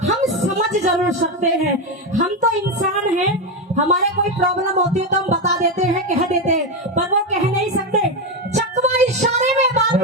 हम समझ जरूर सकते हैं। हम तो इंसान हैं, हमारे कोई प्रॉब्लम होती है तो हम बता देते हैं, कह देते हैं, पर वो कह नहीं सकते। चकवा इशारे में बात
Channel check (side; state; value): both; normal; correlation 0.10